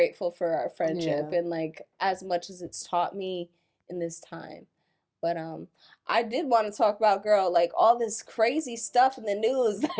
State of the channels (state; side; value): identical; both; correlation 1.00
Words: for our friendship and like as much as it's taught me in this time. But I did want to talk about, girl, like all this crazy stuff in the news,